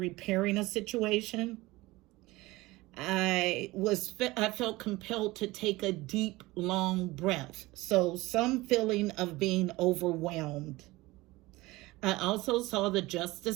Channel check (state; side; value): quieter; left; 20.2 dB